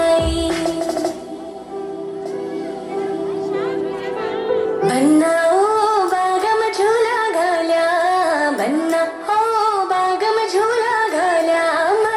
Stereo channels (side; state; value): both; identical; correlation 1.00